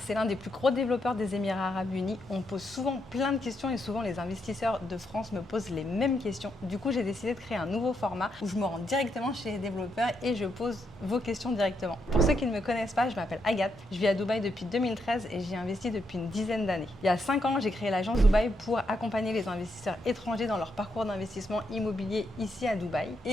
l'un des plus gros développeurs des Émirats Arabes Unis. On me pose souvent plein de questions et souvent les investisseurs de France me posent les mêmes questions. Du coup, j'ai décidé de créer un nouveau format où je me rends directement chez les développeurs et je pose vos questions directement. Pour ceux qui ne me connaissent pas, je m'appelle Agathe. Je vis à Dubaï depuis 2013 et j'y investi depuis une dizaine d'années. Il y a 5 ans, j'ai créé l'agence Dubaï pour accompagner les investisseurs étrangers dans leur parcours d'investissement immobilier ici à Dubaï.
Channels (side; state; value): both; normal; correlation 0.80